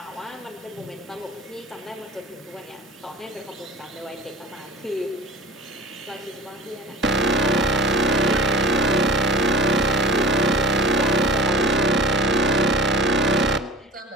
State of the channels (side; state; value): both; normal; correlation 0.37